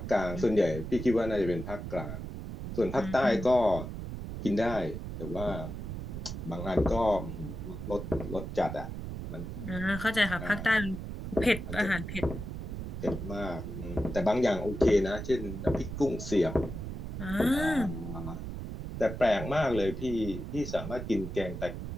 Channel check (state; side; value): noise; right; rumble, 7 dB below the sound